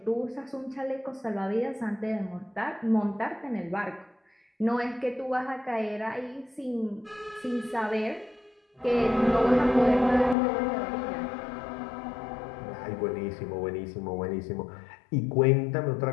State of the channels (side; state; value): right; drops out; at 10.4 s